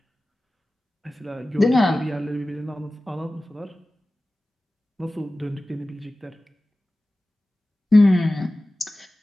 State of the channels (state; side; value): normal; both; correlation 0.96